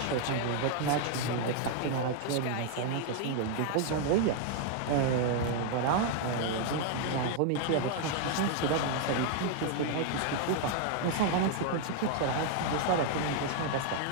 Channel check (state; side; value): different; both; correlation 0.00